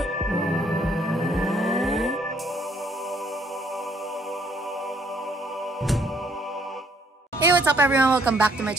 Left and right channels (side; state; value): both; normal; correlation 0.66